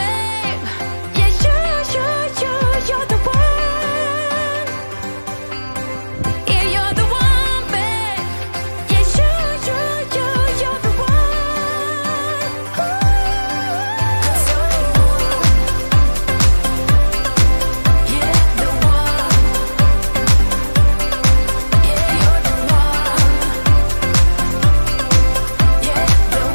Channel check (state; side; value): inverted; both; correlation -1.00